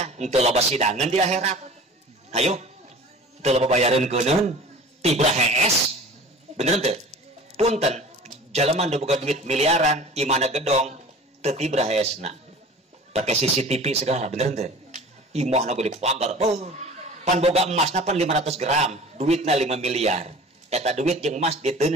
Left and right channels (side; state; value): both; normal; correlation 0.41